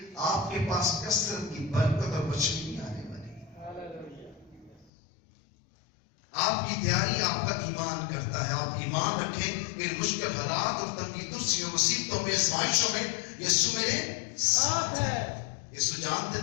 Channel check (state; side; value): drops out; right; at 4.9 s